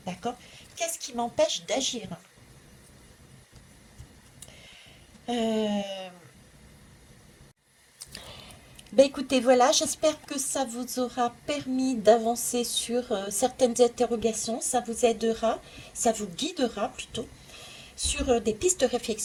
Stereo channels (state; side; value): identical; both; correlation 1.00